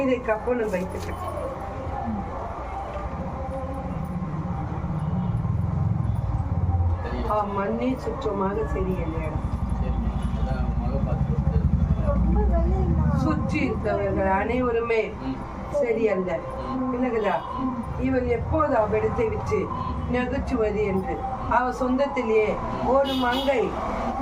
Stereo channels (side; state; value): both; identical; correlation 1.00